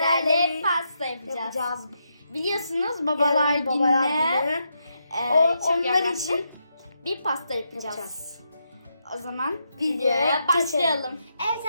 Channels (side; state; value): both; inverted; correlation -0.82